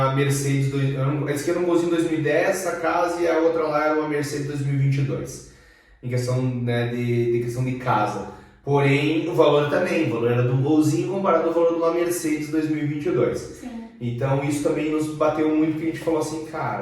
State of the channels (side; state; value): both; identical; correlation 1.00